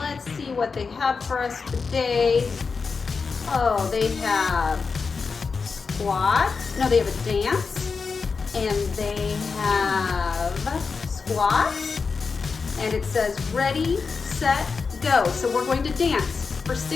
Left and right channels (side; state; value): right; quieter; 4.9 dB